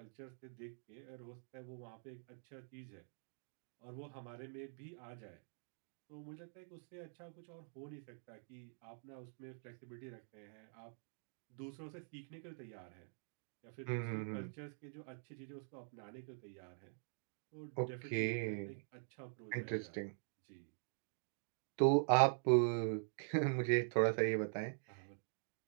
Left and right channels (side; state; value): left; silent; digital silence